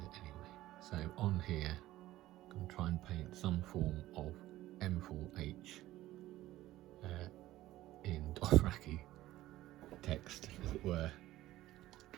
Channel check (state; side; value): quieter; left; 15.7 dB